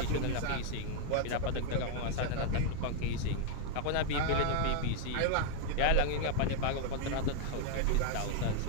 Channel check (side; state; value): both; different; correlation 0.00